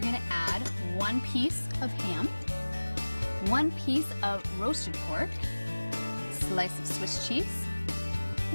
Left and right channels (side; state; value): both; inverted; correlation -1.00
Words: going to add 1 piece of ham, 1 piece of roasted pork, slice of Swiss cheese,